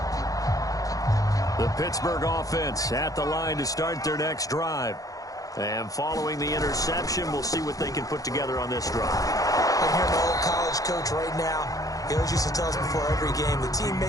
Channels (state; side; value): late; right; 0.17 ms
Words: The Pittsburgh offense at the line to start their next drive. And following the interception, we'll see what they can put together on this drive. I hear my old college coach right now. He always used to tell us before every game, the team